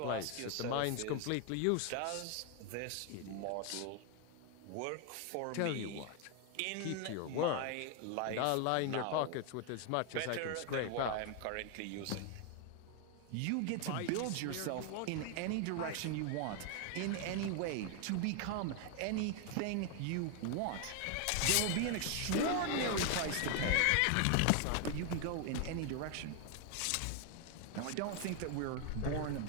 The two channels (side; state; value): both; different; correlation 0.01